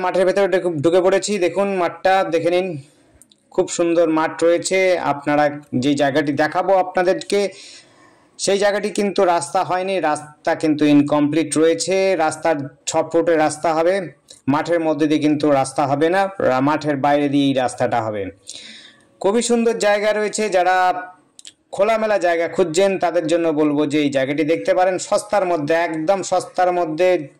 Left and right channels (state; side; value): identical; both; correlation 1.00